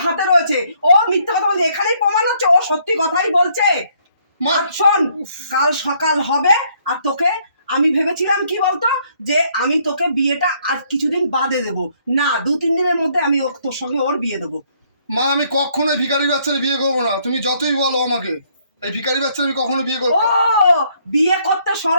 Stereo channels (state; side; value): inverted; both; correlation -0.68